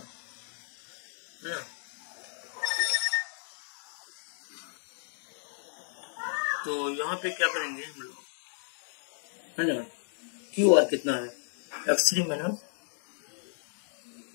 है ना, तो यहाँ पे क्या करेंगे हम लोग है ना, QR कितना है, x3 माइनस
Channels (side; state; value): right; silent; digital silence